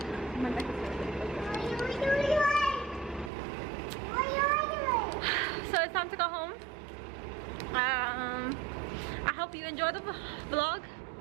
So it's time to go home. I hope you enjoyed the vlog,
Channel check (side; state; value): left; drops out; at 3.3 s